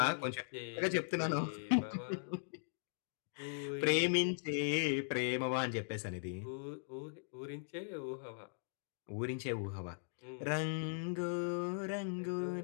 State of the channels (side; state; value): right; silent; digital silence